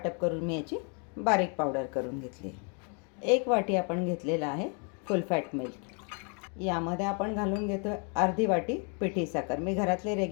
करून मी याची बारीक पावडर करून घेतली. 1 वाटी आपण घेतलेला आहे फुल फॅट मिल्क. यामध्ये आपण घालून घेतो अर्धी वाटी पिठी साखर. मी घरातले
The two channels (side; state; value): right; quieter; 38.5 dB